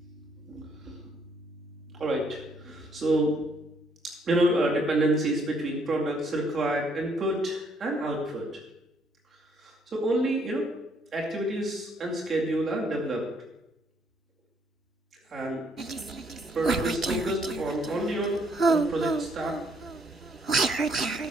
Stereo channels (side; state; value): both; normal; correlation 0.68